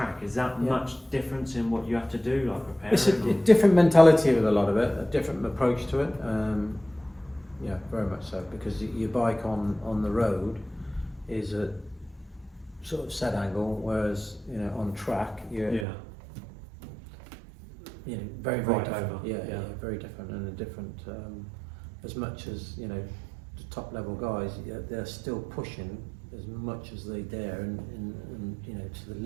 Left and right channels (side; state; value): left; drops out; at 15.9 s